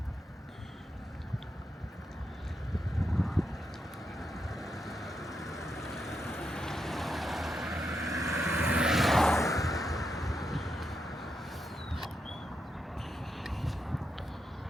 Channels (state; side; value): normal; both; correlation 0.84